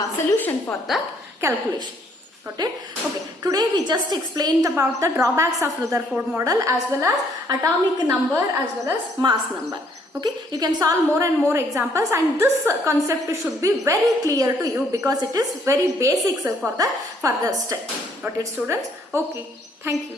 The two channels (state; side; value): normal; both; correlation 0.66